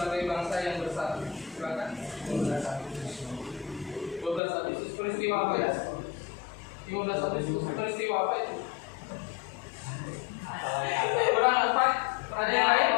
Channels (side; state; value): right; drops out; at 4.4 s